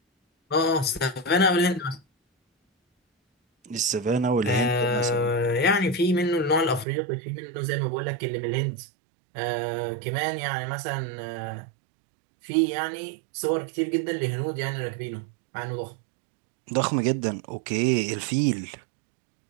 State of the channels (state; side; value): drops out; left; at 6.9 s